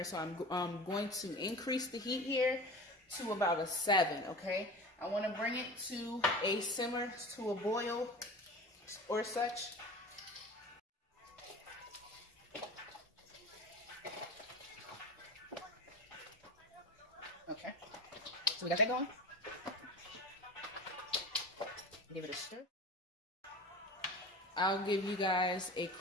So I'm going to increase the heat here to about a 7, okay? I want to bring it to a simmer, to a boil or such. Okay, so we got that going. Give it a stir. I'll give you guys a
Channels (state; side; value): normal; both; correlation 0.33